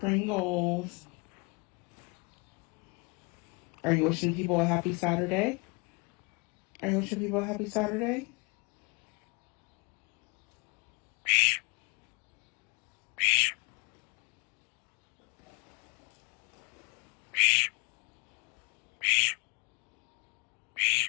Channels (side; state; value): right; quieter; 30.1 dB